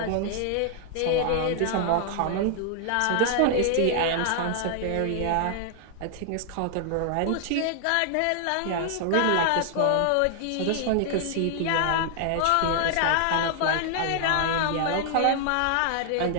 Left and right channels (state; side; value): different; both; correlation 0.00